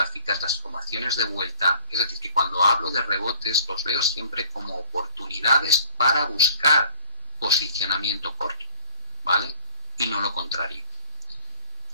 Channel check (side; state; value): both; inverted; correlation -0.54